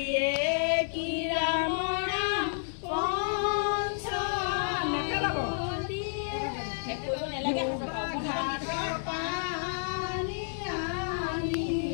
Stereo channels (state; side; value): silent; right; digital silence